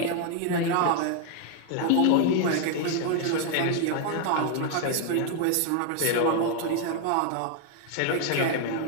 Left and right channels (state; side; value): different; both; correlation 0.00